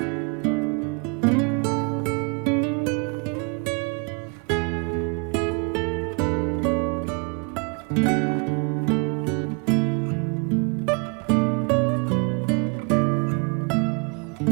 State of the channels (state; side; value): quieter; left; 35.5 dB